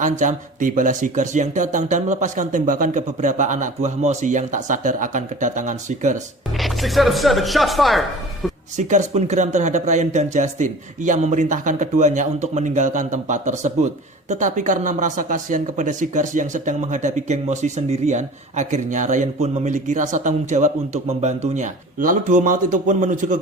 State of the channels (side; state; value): both; normal; correlation 0.40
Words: tibalah Seekers yang datang dan melepaskan tembakan ke beberapa anak buah Mosi yang tak sadar akan kedatangan Seekers. 6 out of 7, shots fired! Seekers pun geram terhadap Ryan dan Justin. Ia memerintahkan keduanya untuk meninggalkan tempat tersebut. Tetapi karena merasa kasihan kepada Seekers yang sedang menghadapi geng Mosi sendirian, akhirnya Ryan pun memiliki rasa tanggung jawab untuk membantunya. Lalu duo maut itu pun menuju ke